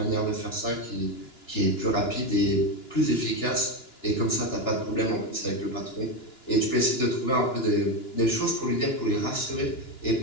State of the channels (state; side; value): late; right; 2.9 ms